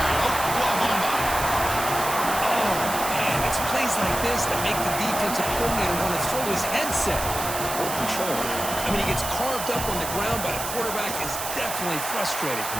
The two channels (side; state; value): right; noise; hiss, 6 dB below the sound